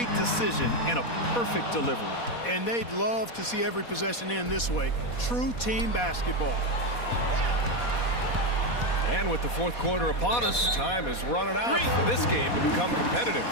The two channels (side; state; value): right; late; 4.2 ms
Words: decision and a perfect delivery. And they'd love to see every possession end this way. True team basketball. And with the fourth quarter upon us, time is running out for this game to become competitive.